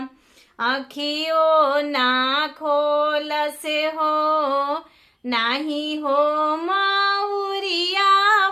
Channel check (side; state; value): both; identical; correlation 1.00